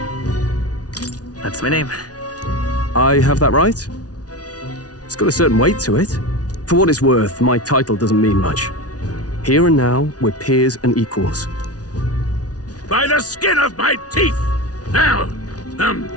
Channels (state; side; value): late; right; 0.68 ms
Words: That's my name. I have that right? It's got a certain weight to it. For what it's worth, my title doesn't mean much. Here and now, we're peers and equals. By the skin of my teeth! Now,